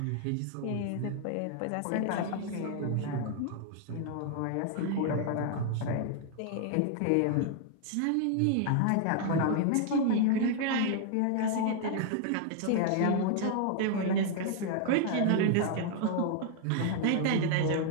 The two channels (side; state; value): both; different; correlation 0.00